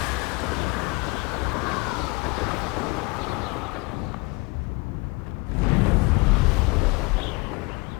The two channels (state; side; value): quieter; right; 25.7 dB